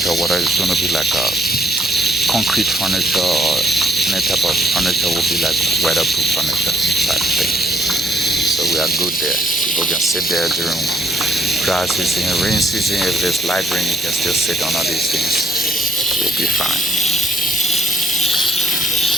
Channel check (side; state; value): both; normal; correlation 0.66